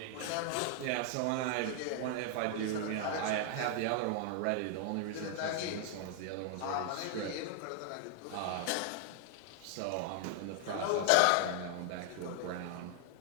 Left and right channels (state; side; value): different; both; correlation 0.00